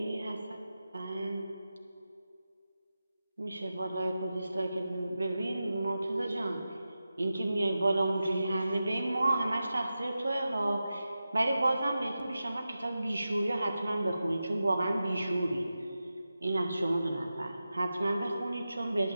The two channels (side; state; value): both; inverted; correlation -0.92